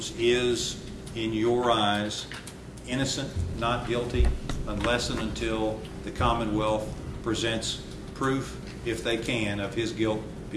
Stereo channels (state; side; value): identical; both; correlation 1.00